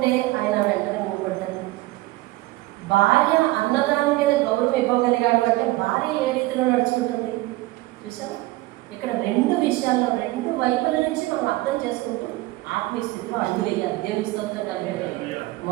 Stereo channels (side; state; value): left; quieter; 19.2 dB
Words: ఆయన వెంటనే ఊపడ్డాడు. భార్య అన్నదాని మీద గౌరవం ఇవ్వగలిగాడు అంటే భార్య ఏ రీతిలో నడుచుకుంటుంది చూసారా? ఇక్కడ రెండు విషయాల్లో రెండు వైపుల నుంచి మనం అర్థం చేసుకుంటూ ఆత్మీయ స్థితిలో అడుగులేయాలి. దేవుని స్తోత్రం కలిగాడు.